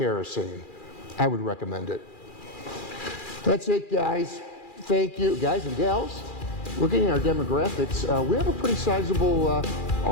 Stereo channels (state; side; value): late; right; 2.4 ms